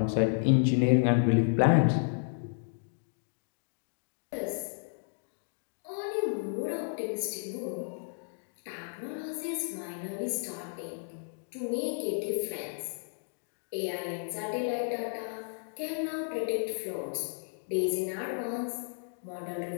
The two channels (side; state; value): right; silent; digital silence